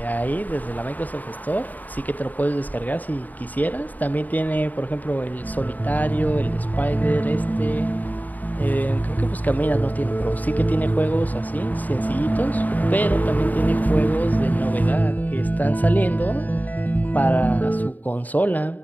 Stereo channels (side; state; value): right; late; 0.082 ms